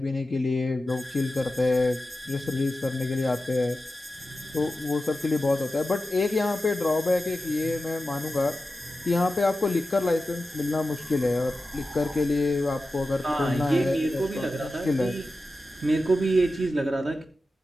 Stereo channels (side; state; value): both; normal; correlation 0.93